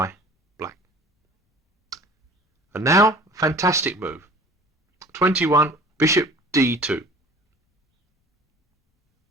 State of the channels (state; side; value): normal; both; correlation 0.46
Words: black. And now, fantastic move. 21, bishop d2.